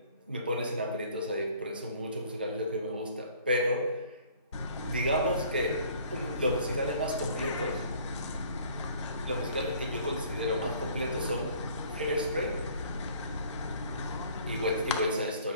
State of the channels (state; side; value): inverted; both; correlation -0.54